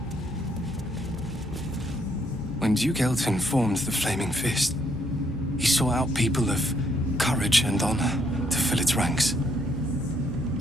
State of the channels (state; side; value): noise; left; hum, 15 dB below the sound